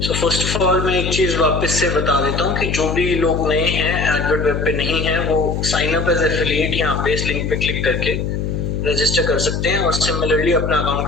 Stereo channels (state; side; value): noise; left; hum, 2 dB below the sound